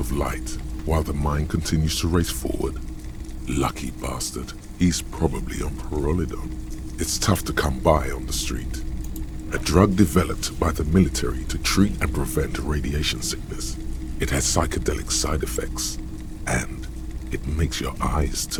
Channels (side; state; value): both; identical; correlation 1.00